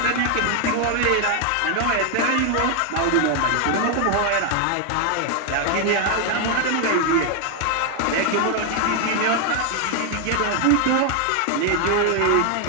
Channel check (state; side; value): different; both; correlation 0.00